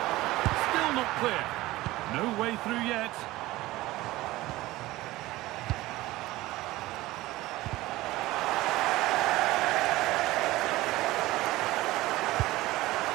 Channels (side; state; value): left; quieter; 18.1 dB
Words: Still not clear. No way through yet.